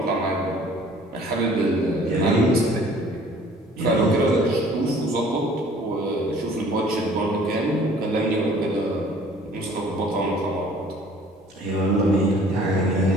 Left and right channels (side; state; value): both; normal; correlation 0.53